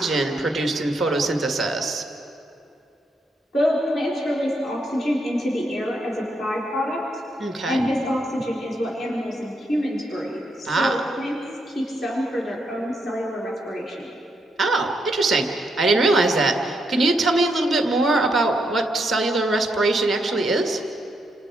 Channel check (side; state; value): both; normal; correlation 0.79